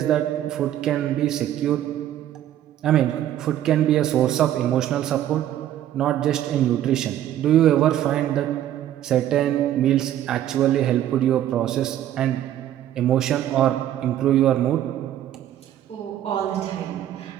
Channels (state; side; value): quieter; left; 11.9 dB